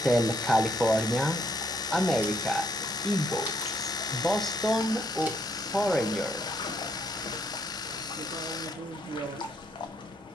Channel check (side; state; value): both; normal; correlation 0.71